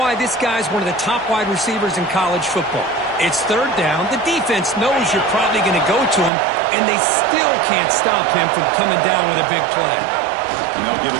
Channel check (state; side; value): drops out; left; at 6.3 s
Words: this guy's one of the top wide receivers in college football. It's 3rd down. The defense knows you're probably going to go to him, and they still can't stop him from coming down with a big play. And they'll give